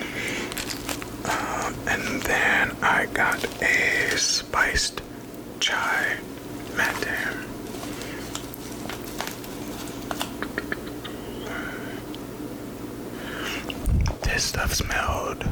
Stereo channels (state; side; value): identical; both; correlation 1.00